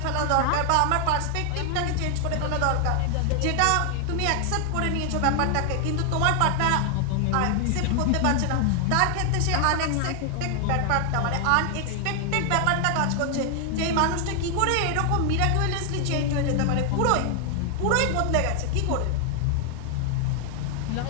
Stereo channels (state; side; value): different; both; correlation 0.00